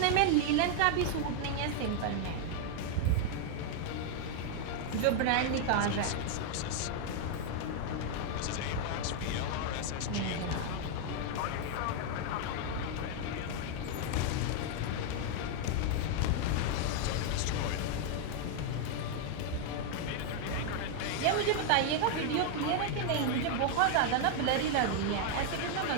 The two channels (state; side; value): different; both; correlation 0.00